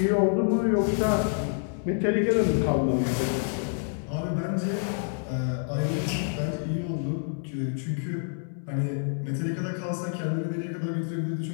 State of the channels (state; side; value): silent; right; 60 dB below the other